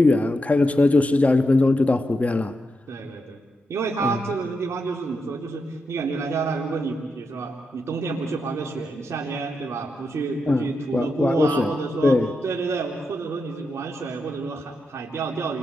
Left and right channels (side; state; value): both; normal; correlation 0.85